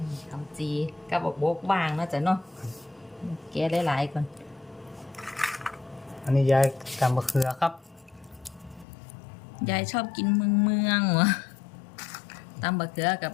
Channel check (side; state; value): right; drops out; at 8.8 s